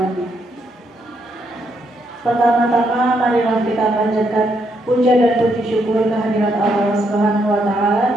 Pertama-tama marilah kita panjatkan puja dan puji syukur kehadirat Allah Subhanahu wa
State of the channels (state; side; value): normal; both; correlation 0.76